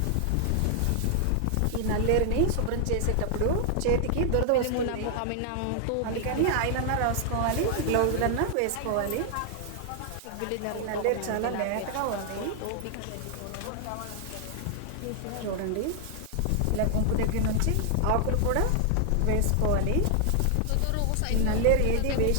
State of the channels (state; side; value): different; both; correlation 0.00